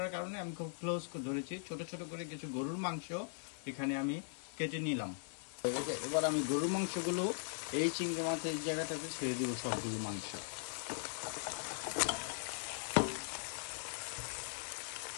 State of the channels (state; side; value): silent; right; 51 dB below the other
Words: কারণে আমি খুব ক্লোজ করে ধরেছি, ছোট ছোট করে কিছু গরুর মাংস এখানে আমি কেটে নিলাম। এবার আমি গরুর মাংসগুলো এই চিংড়ি মাছের জায়গাটাতে ছেড়ে দিব। সবগুলো মাংস